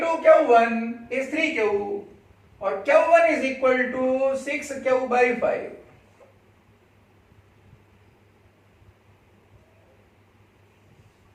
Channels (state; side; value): identical; both; correlation 1.00